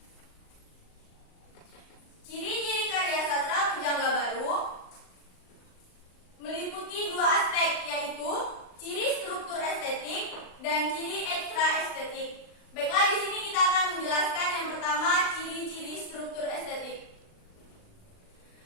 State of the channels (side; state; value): right; late; 39 ms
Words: Ciri-ciri karya sastra pujangga baru meliputi dua aspek, yaitu ciri struktur estetik dan ciri ekstra estetik. Baiklah, di sini kita akan menjelaskan yang pertama, ciri-ciri struktur estetik.